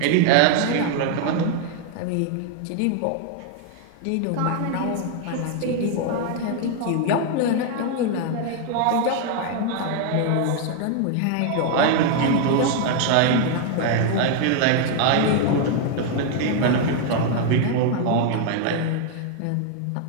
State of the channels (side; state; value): both; different; correlation 0.01